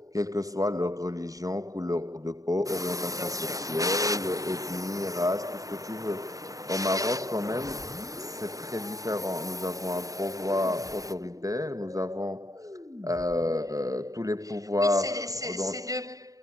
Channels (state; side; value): late; left; 0.17 ms